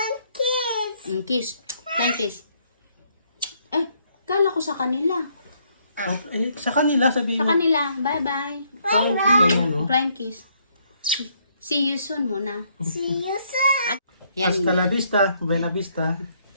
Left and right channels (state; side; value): inverted; both; correlation -0.70